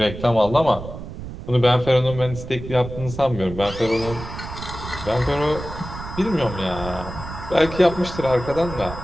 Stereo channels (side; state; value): right; noise; rumble, 11 dB below the sound